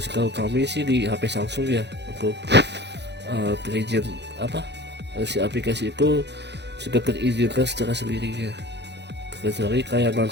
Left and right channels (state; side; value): late; left; 0.50 ms